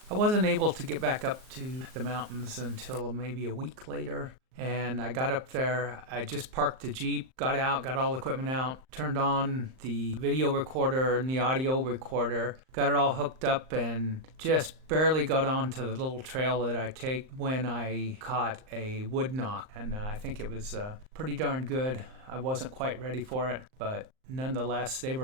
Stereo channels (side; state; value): left; late; 38 ms